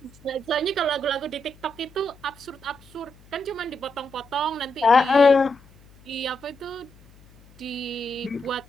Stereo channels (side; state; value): left; noise; hum, 26 dB below the sound